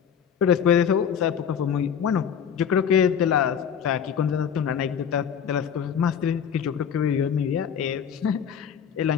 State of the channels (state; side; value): quieter; right; 7.8 dB